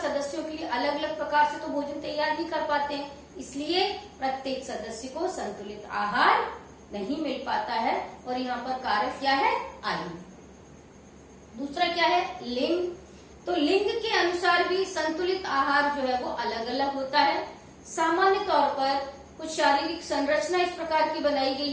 के लिए अलग अलग प्रकार से तो भोजन तैयार नहीं कर पाते हैं, इसलिए प्रत्येक सदस्य को संतुलित आहार नहीं मिल पाता है। और यहाँ पर कारक क्या है? आयु। दूसरा क्या है? लिंग। तो लिंग के अनुसार भी संतुलित आहार जो है वो अलग अलग होता है। सामान्य तौर पर कुछ शारीरिक संरचना इस प्रकार की बनाई गई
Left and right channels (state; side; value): identical; both; correlation 1.00